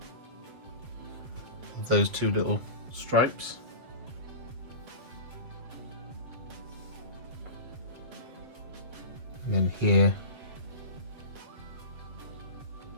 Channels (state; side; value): late; left; 8.0 ms